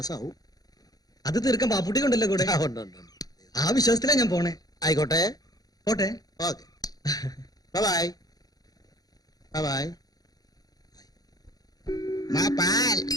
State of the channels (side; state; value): right; late; 0.18 ms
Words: അത് തീർക്കാൻ ബാപ്പുട്ടിക്കുണ്ടല്ലോ കൂടെ. ആ വിശ്വാസത്തിലാ ഞാൻ പോണേ. ആയിക്കോട്ടെ പോട്ടെ. Okay bye by.